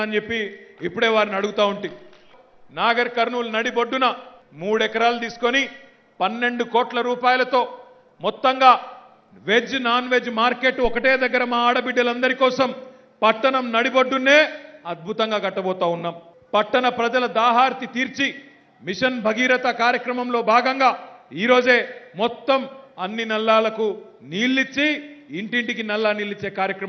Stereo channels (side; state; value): both; identical; correlation 1.00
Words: అని చెప్పి ఇప్పుడే వారిని అడుగుతా ఉంటే, నాగర్ కర్నూలు నడిబొడ్డున 3 ఎకరాలు తీసుకొని 12 కోట్ల రూపాయలతో మొత్తంగా వెజ్ నాన్ వెజ్ మార్కెట్ ఒకటే దగ్గర మా ఆడబిడ్డలందరి కోసం పట్టణం నడిబొడ్డునే అద్భుతంగా కట్టబోతా ఉన్నాం. పట్టణ ప్రజల దాహార్తి తీర్చి మిషన్ భగీరథ కార్యక్రమంలో భాగంగా ఈరోజే మొత్తం అన్ని నల్లాలకు నీళ్ళిచ్చి ఇంటింటికి నల్లా నీళ్ళిచ్చే